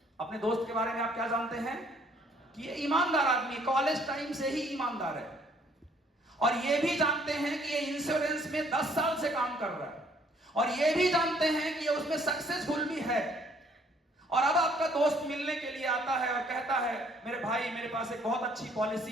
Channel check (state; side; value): normal; both; correlation 0.62